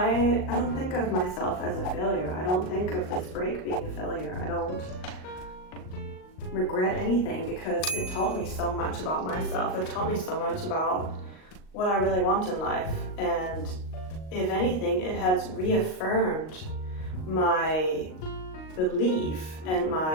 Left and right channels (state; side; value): late; right; 38 ms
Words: don't think of myself as a failure. I don't think of this break being a failure. I don't regret anything because it taught me so much about myself. It taught me so much about what I really want in life, and if anything, it has reaffirmed my belief and